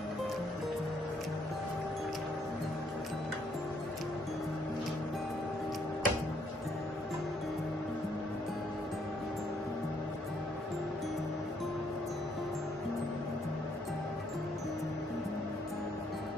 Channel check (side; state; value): both; normal; correlation 0.69